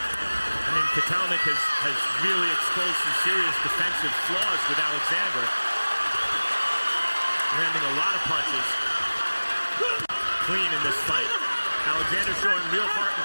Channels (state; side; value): inverted; both; correlation -1.00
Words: mean, Kotelnik has really exposed some serious defensive flaws with Alexander. Landing a lot of punches. Clean in this fight. Alexander showing real heart